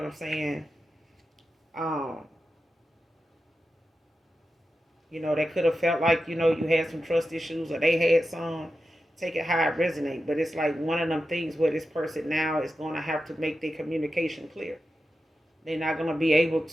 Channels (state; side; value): normal; both; correlation 0.91